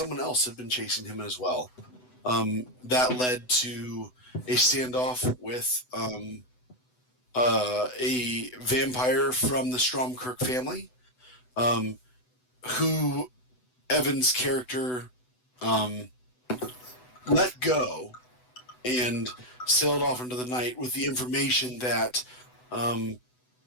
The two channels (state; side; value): late; right; 8.0 ms